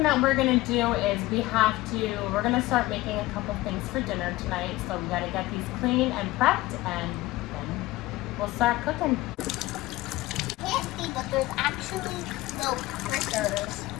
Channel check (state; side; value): quieter; right; 18.5 dB